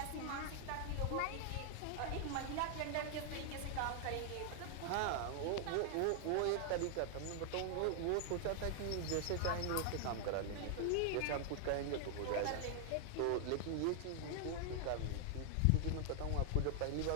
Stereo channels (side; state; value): both; different; correlation 0.00